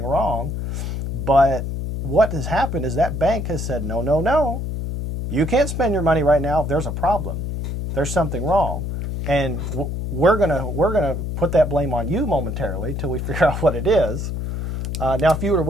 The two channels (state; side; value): noise; left; hum, 4 dB below the sound